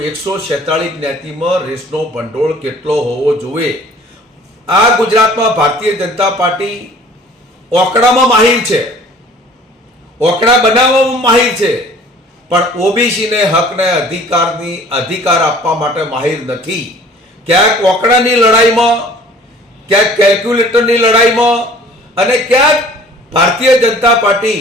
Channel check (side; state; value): both; normal; correlation 0.50